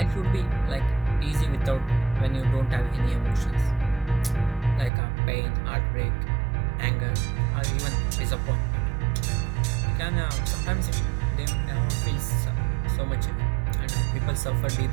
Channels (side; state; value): left; drops out; at 4.9 s